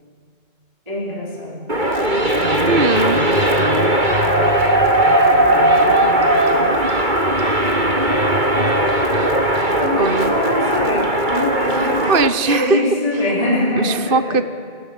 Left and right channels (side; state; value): left; late; 2.3 ms